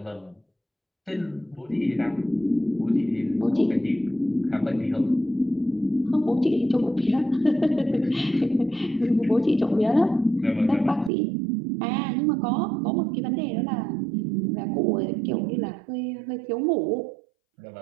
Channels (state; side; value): drops out; left; at 11.1 s